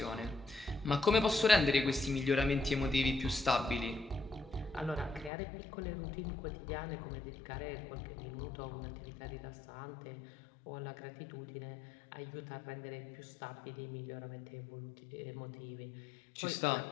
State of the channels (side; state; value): right; drops out; at 5.3 s